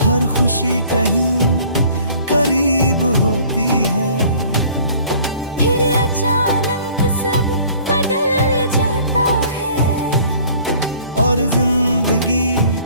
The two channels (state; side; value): inverted; both; correlation -0.53